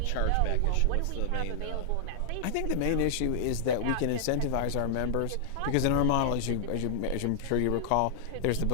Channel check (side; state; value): both; different; correlation -0.01